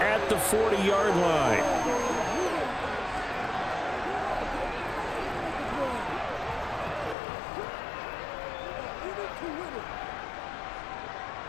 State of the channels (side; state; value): right; drops out; at 7.2 s